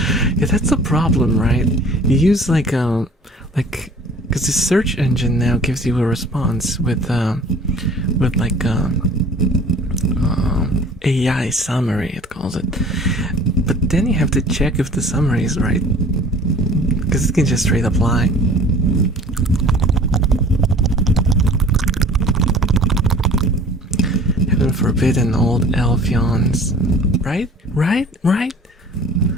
Yeah, that's the problem, right? You use like because the search engine now gives you a response with AI summary, it calls it. But then you have to check if the summary is right, because it can just straight up lie. Heaven forbid an old elf yawns. Right? I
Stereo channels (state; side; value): normal; both; correlation 0.47